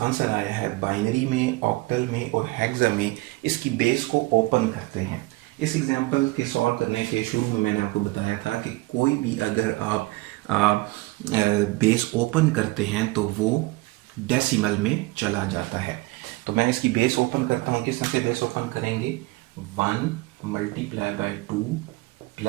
आया है बाइनरी में, ऑक्टल में और हेक्सा में, इसकी बेस को ओपन करते हैं। इस एग्जांपल के सॉल्व करने के शुरू में मैंने आपको बताया था कि कोई भी अगर आप बेस ओपन करते हैं तो वो डेसिमल में चला जाता है। तो मैं इसकी बेस ओपन करता हूँ। किस तरह से बेस ओपन करेंगे? 1 multiply by 2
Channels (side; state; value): left; quieter; 21.9 dB